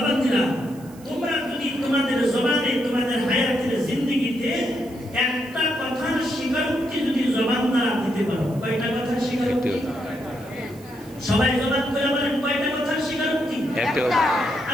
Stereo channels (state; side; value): noise; right; hiss, 24 dB below the sound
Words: তোমরা যদি তোমাদের জবানে, তোমাদের হায়াতের জিন্দেগিতে একটা কথার স্বীকারোক্তি যদি জবান দ্বারা দিতে পারো। কয়টা কথার স্বীকারোক্তি? সবাই জবান করে বলেন, কয়টা কথার স্বীকারোক্তি? একটা।